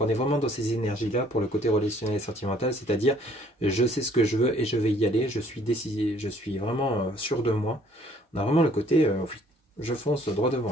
est vraiment dans ces énergies-là pour le côté relationnel et sentimental. C'est-à-dire, je sais ce que je veux et je vais y aller. Je suis décidé, je suis vraiment sûr de moi. On a vraiment le côté, je fonce droit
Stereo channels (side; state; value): both; normal; correlation 0.60